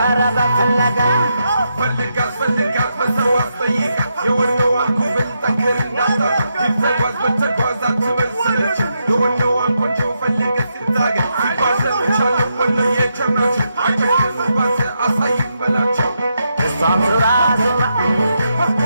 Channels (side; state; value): both; inverted; correlation -0.82